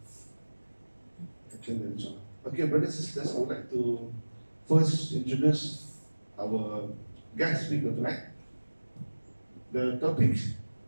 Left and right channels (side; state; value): both; inverted; correlation -1.00